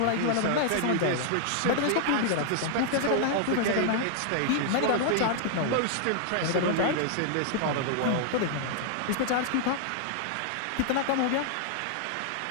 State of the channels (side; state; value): both; different; correlation 0.00